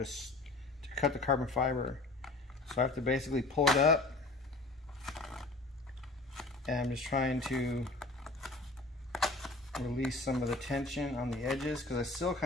cut the carbon fiber. So I have to basically pull it up. And I'm just trying to release some of the tension on the edges because I still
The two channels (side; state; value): right; quieter; 3.1 dB